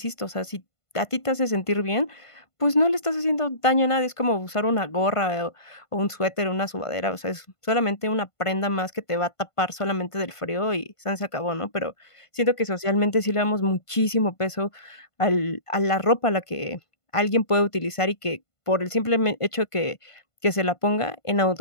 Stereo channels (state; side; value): late; right; 1.5 ms